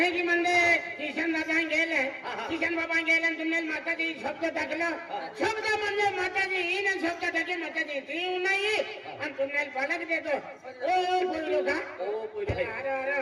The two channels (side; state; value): both; identical; correlation 1.00